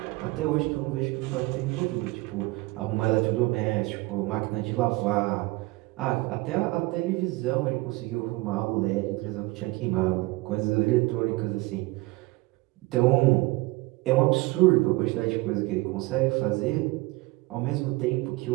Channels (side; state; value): left; quieter; 22.1 dB